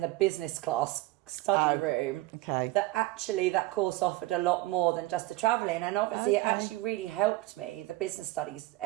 the business class study room that actually that course offered a lot more than just the travelling, and obviously it actually really helped me, the business studies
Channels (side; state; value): left; quieter; 19.2 dB